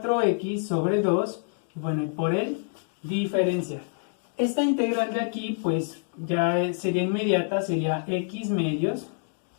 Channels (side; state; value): right; silent; digital silence